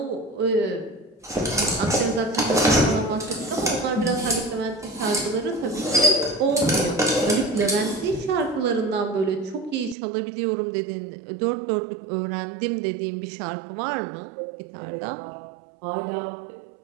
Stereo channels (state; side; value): drops out; left; at 10.0 s